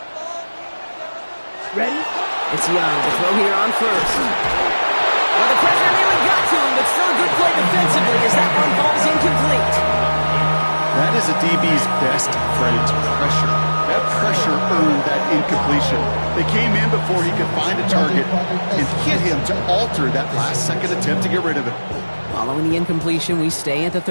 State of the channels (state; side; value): inverted; both; correlation -1.00